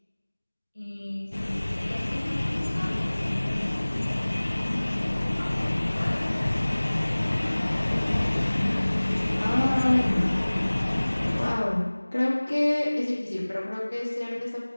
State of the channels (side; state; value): both; inverted; correlation -1.00